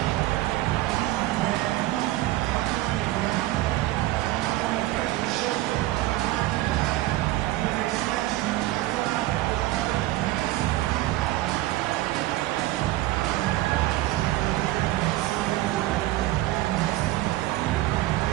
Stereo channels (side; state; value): left; quieter; 16.8 dB